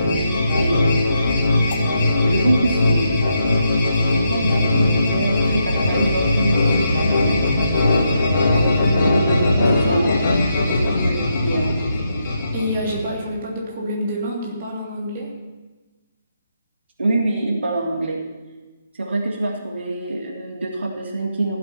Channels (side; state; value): both; inverted; correlation -0.80